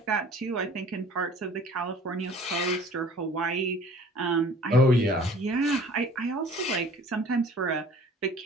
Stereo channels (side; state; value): both; normal; correlation 0.50